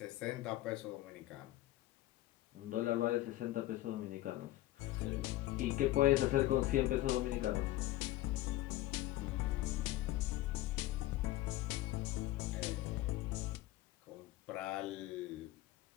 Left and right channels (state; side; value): quieter; right; 16.2 dB